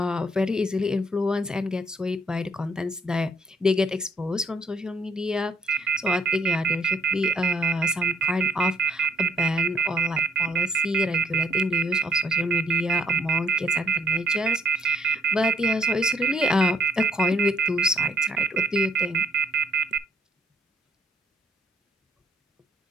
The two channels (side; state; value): both; normal; correlation 0.65